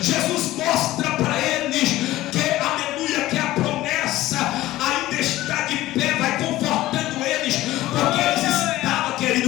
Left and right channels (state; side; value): quieter; right; 16.1 dB